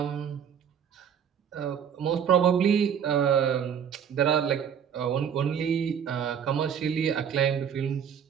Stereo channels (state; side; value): quieter; left; 8.1 dB